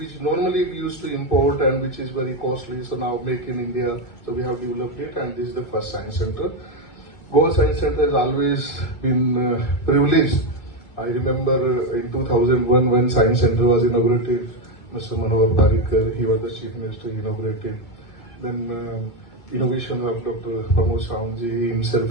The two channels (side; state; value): right; late; 2.3 ms